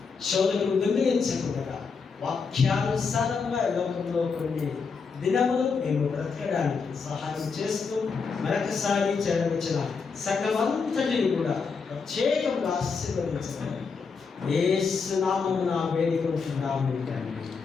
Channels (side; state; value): right; quieter; 5.2 dB